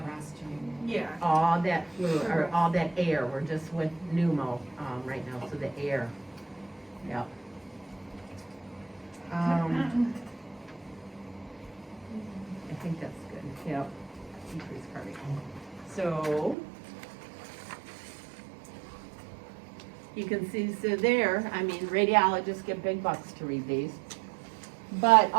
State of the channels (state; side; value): drops out; left; at 16.6 s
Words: yeah. All that fluid, or all that air, we're just with pneumo, right now, so the air, yep. I think that's good, yep, increase cardiac. So, you can see, so there, I mean, radiologists get big bucks to read these. But